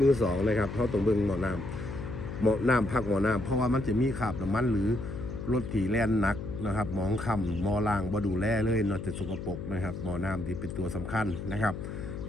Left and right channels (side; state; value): left; noise; hum, 7 dB below the sound